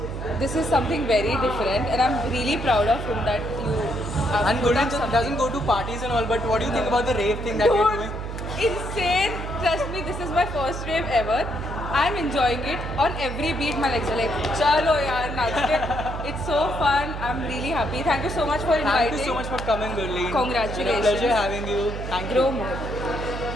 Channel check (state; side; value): noise; right; hum, 7 dB below the sound